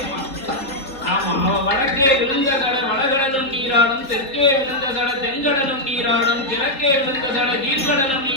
ஆமா அவ வடக்கே விழுந்த கடை வடகடலும் நீராடும், தெற்கே விழுந்த கடை தென்கடலும் நீராடும், கிழக்கே விழுந்த கடை கீழ்கடலும்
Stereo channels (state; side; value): late; right; 3.9 ms